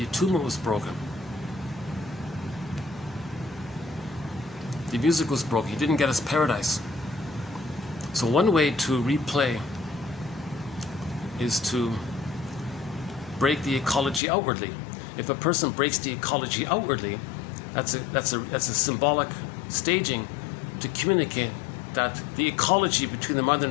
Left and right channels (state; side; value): drops out; right; at 14.2 s